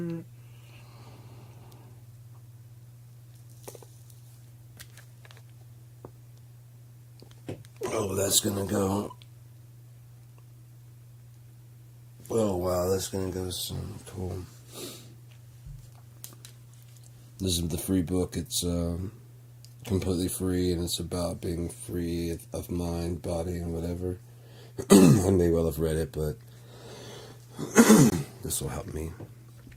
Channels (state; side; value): identical; both; correlation 1.00